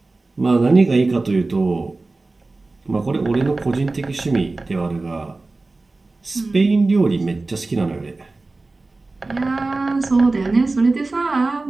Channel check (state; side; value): quieter; left; 3.4 dB